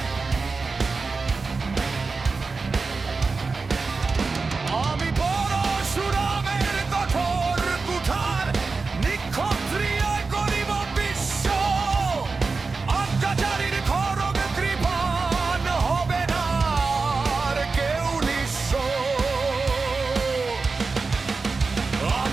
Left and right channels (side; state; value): left; quieter; 4.2 dB